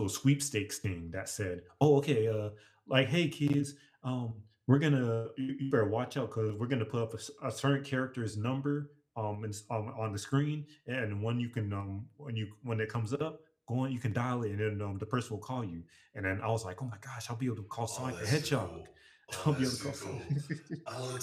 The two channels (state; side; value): identical; both; correlation 1.00